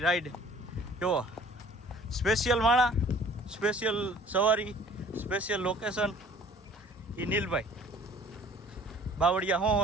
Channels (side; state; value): both; normal; correlation 0.52